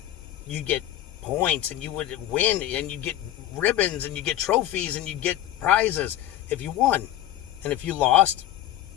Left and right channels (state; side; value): quieter; right; 12.6 dB